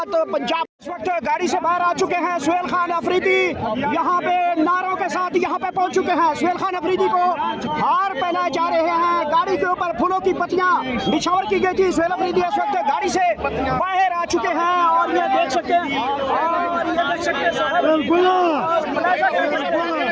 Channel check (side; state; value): both; identical; correlation 1.00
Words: पंजाब इस वक्त गाड़ी से बाहर आ चुके हैं। सुहेल खान अफरीदी यहाँ पे नारों के साथ यहाँ पे पहुंच चुके हैं। सुहेल खान अफरीदी को हार पहनाए जा रहे हैं। गाड़ी के ऊपर फूलों की पत्तियां निछावर की गई थी। सुहेल अफरीदी इस वक्त गाड़ी से बाहर आ चुके हैं और ये देख सकते हैं